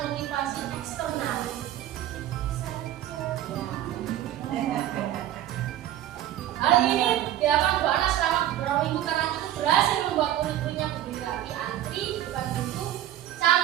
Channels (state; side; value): quieter; left; 12.5 dB